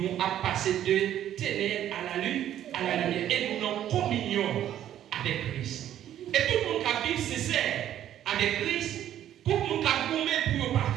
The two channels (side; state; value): left; quieter; 11.4 dB